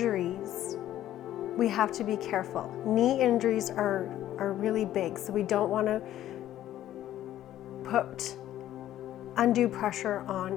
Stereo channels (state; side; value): quieter; right; 12.7 dB